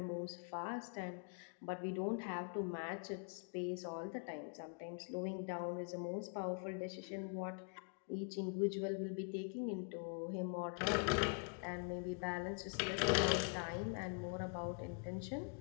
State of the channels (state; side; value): quieter; right; 38.4 dB